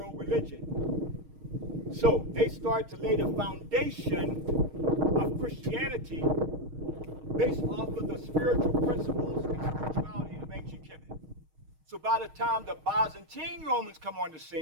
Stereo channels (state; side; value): late; left; 6.4 ms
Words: religion. So they start to lay the foundation of Christianity based off of the spiritual principles and spirituality of ancient Kemet. So by the time the Byzantine Romans come on the